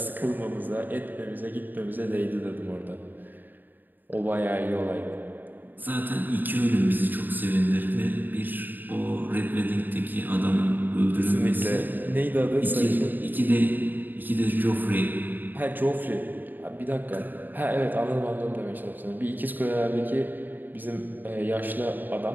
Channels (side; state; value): left; late; 0.089 ms